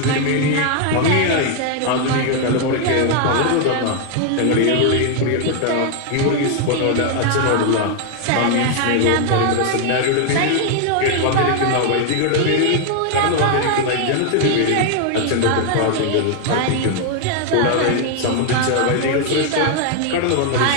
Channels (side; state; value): both; different; correlation 0.00